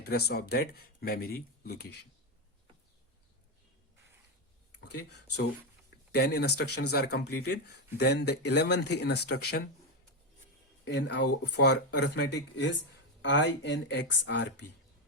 of that memory location. Okay, so 10 instructions are completed. Then the 11th instruction in our for arithmetic is INXRP.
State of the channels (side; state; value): both; normal; correlation 0.10